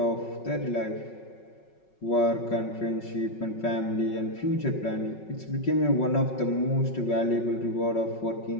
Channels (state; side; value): late; right; 5.4 ms